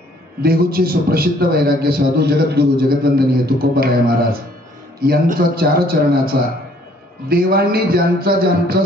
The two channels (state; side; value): normal; both; correlation 0.61